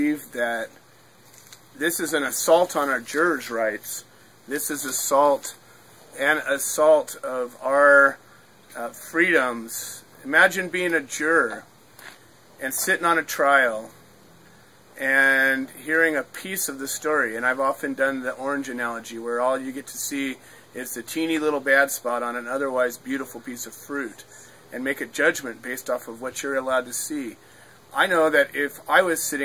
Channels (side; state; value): both; identical; correlation 1.00